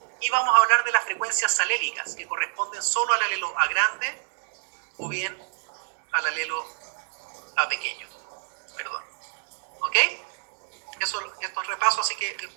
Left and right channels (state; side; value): silent; left; digital silence